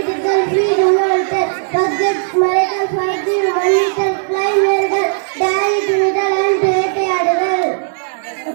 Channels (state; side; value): silent; left; 69 dB below the other